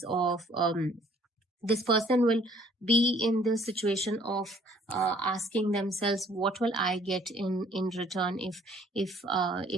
of this person will be in the situation of asking themselves, what will I get in return if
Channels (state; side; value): normal; both; correlation 0.59